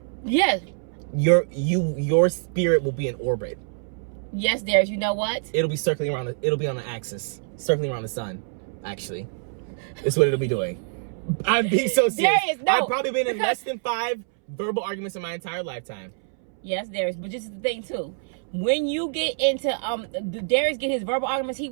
Yes. your spirit will be in orbit. Yes, Darius, you know what? It'll be circling around. It'll be on an axis, circling around the sun. Actually, is what it'll be doing. I'm being so serious. Darius, no, I've probably been in because- less than 5 verbal arguments in my entire lifetime. Yes, Darius, but this is the thing too. When you get into Darius get his verbal arguments, he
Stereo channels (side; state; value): left; silent; 62 dB below the other